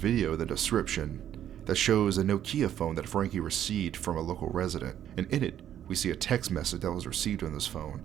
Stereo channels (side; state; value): left; quieter; 10.7 dB